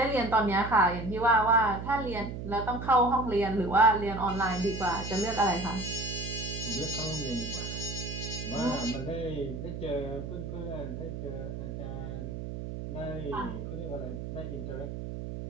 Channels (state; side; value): noise; right; hum, 7 dB below the sound